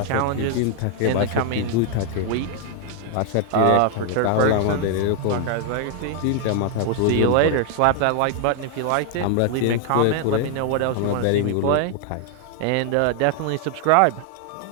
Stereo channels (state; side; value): different; both; correlation 0.00